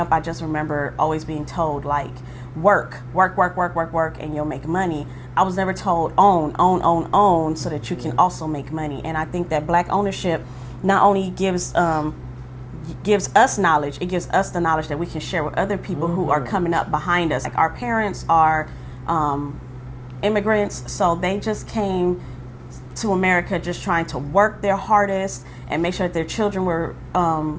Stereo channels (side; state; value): both; identical; correlation 1.00